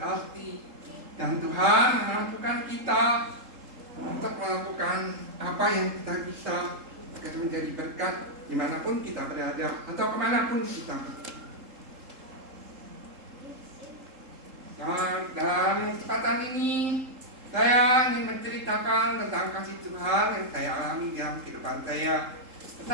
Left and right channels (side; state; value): left; late; 3.8 ms